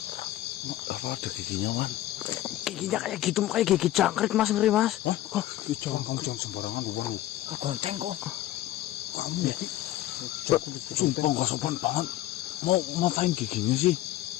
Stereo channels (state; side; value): quieter; right; 14.4 dB